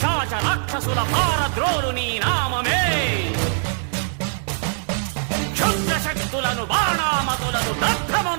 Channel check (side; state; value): left; silent; 64 dB below the other